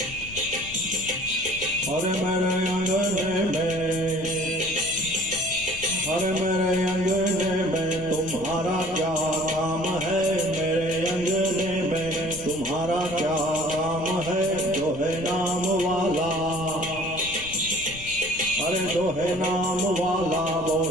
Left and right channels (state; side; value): noise; left; rumble, 16 dB below the sound